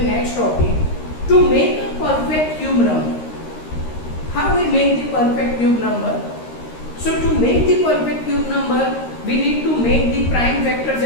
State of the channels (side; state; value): right; late; 13 ms